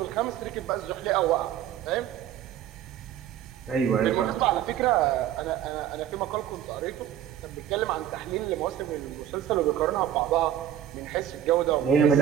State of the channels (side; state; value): left; quieter; 10.7 dB